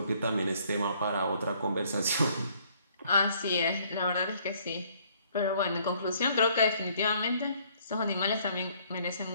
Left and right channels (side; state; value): both; inverted; correlation -0.63